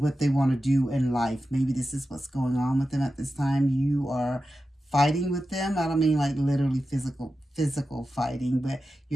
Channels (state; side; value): normal; both; correlation 0.92